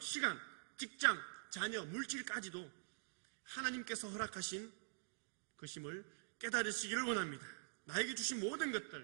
시간, 직장, 자녀, 물질까지도 하나님께서 허락하신 것임을 깨달으시기를 원합니다. 나에게 주신 모든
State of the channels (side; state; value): left; silent; digital silence